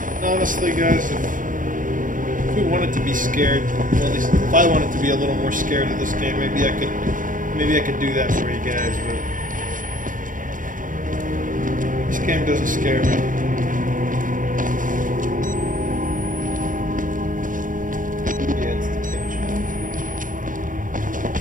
Honestly, guys, if we wanted to be scared, well, at least if I wanted to be a little more scared of this game, maybe I could do that for you guys, but this game doesn't scare me. Yeah, it's the kitchen.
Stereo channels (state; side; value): late; left; 0.39 ms